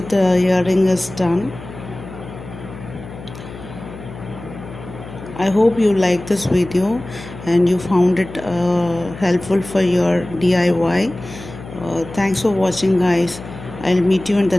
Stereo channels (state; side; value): noise; left; hum, 14 dB below the sound